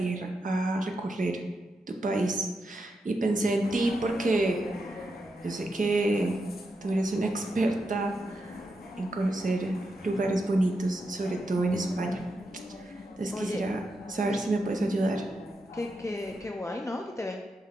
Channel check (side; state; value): both; normal; correlation 0.85